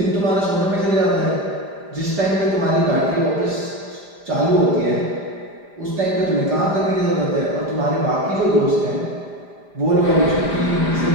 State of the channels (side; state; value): left; late; 5.0 ms